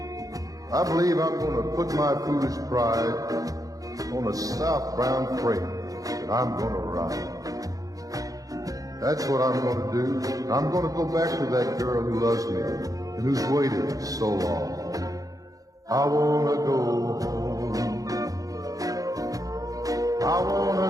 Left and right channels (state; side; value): late; left; 0.17 ms